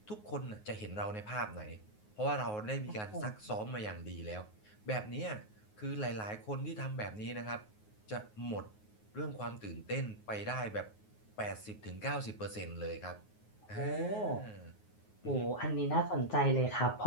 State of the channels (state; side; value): late; right; 9.5 ms